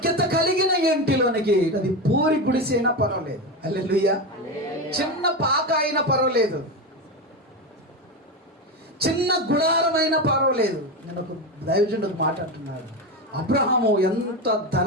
కలిగిన ఇంటిలోనికి, అది పూరి గుడిసైనా పర్వాలేదు. హల్లెలూయా. చిన్న పాక అయినా పర్వాలేదు, చిన్న గుడారమైనా పర్వాలేదు. నేను ఒక దైవజనుడు మాట్లాడుతున్నాడు. అబ్రహాము ఎంత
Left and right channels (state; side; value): normal; both; correlation 0.17